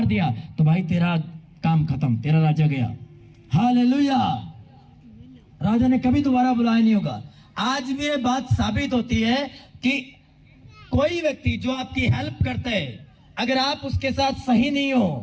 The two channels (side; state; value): both; identical; correlation 1.00